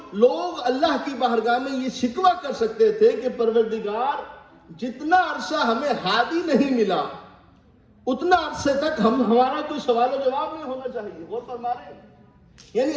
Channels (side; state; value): both; identical; correlation 1.00